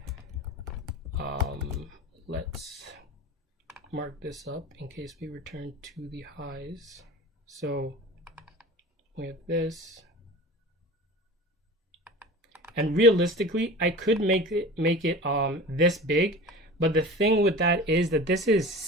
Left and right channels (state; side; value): normal; both; correlation 0.36